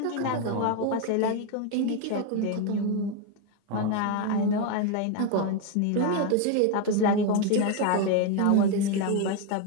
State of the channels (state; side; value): different; both; correlation 0.02